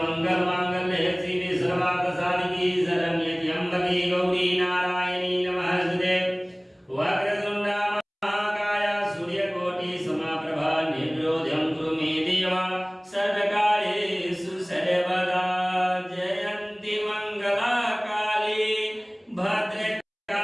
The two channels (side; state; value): both; identical; correlation 1.00